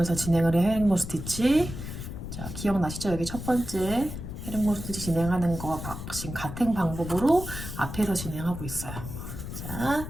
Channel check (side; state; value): left; noise; rumble, 8 dB below the sound